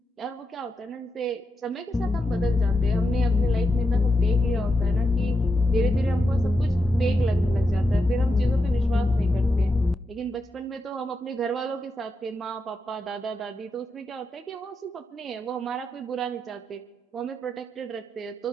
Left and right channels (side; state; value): both; normal; correlation 0.86